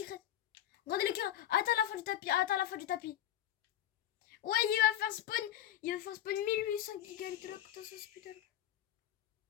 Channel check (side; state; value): right; quieter; 12.1 dB